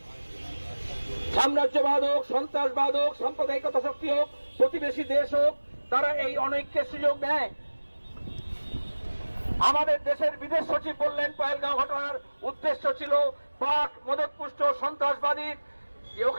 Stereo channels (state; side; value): inverted; both; correlation -1.00